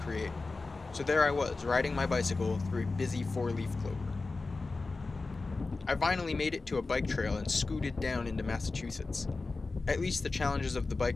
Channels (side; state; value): right; quieter; 3.7 dB